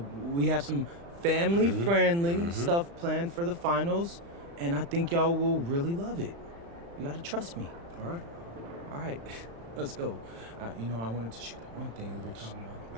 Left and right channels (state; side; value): late; left; 35 ms